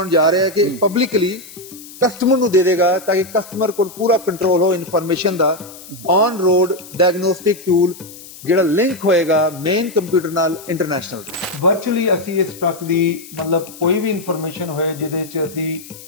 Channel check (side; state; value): left; noise; hiss, 17 dB below the sound